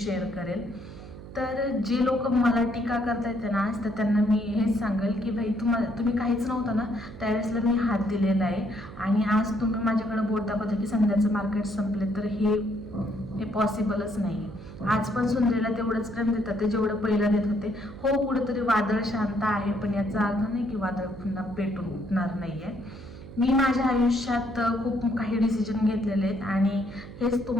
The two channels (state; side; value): noise; right; hum, 15 dB below the sound